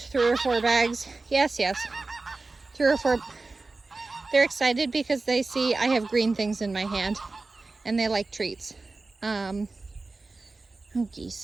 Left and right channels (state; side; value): quieter; left; 3.6 dB